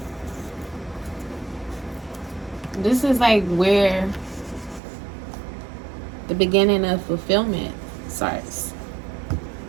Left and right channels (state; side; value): drops out; left; at 4.8 s